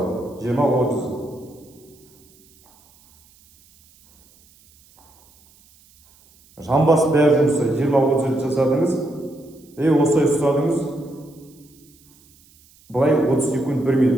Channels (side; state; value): right; noise; hiss, 30 dB below the sound